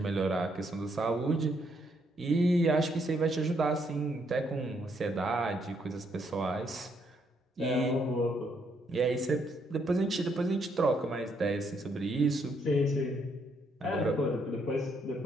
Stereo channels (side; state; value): both; normal; correlation 0.73